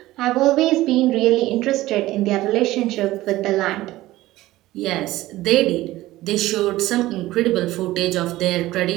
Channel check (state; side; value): quieter; left; 16.8 dB